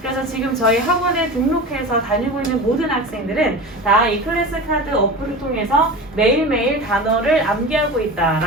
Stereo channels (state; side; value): normal; both; correlation 0.30